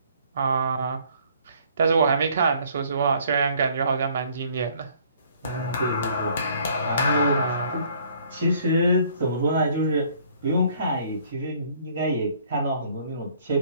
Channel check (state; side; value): inverted; both; correlation -0.60